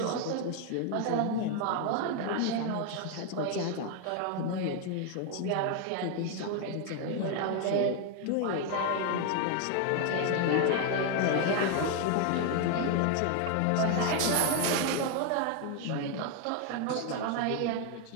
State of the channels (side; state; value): both; different; correlation 0.01